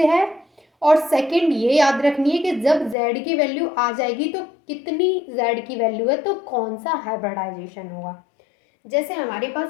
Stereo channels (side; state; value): right; drops out; at 3.0 s